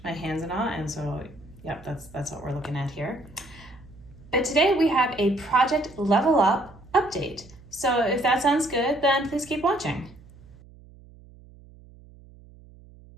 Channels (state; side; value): noise; right; hum, 22 dB below the sound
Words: my hands and all, and so yep, that's what we're looking at here. But today we have a Project Level Up update. So if that sounds good, then please keep watching.